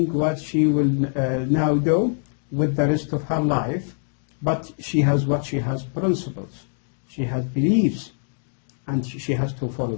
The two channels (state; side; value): silent; right; digital silence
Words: what she will now do with the rest of her life, but she has what? She has principles, she has beliefs, and she has to follow